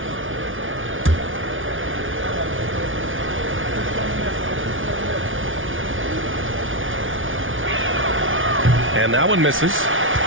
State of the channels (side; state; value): left; late; 0.57 ms